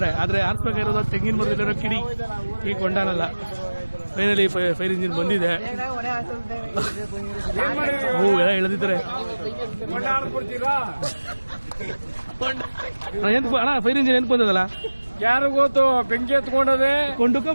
ಆದ್ರೆ ಹಾರಿಸ್ಬೇಕಾಗಿರೋದು ತೆಂಗಿನ ಮರದಲ್ಲಿರೋ ಕಿಡಿ, ಈ ಕೊಂಡನಲ್ಲ. ಫೈನಲಿ ಫೈರ್ ಇಂಜಿನ್ ಬಂದಿದೆ. ಎಲ್ಲ ಎಳೆದಿದ್ದಾರೆ. ಅಣ್ಣ ಫೈರ್ ಇಂಜಿನ್ ಏನ್ ಬಂದದಲ್ಲ ಯಾರು ಗೊತ್ತು ಬೆಂಕಿ ಎತ್ಕೊಂಡದೆ ಕೊಂಡುಕ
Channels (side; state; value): both; inverted; correlation -1.00